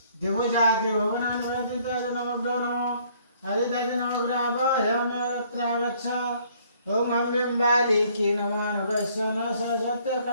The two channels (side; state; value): both; inverted; correlation -0.62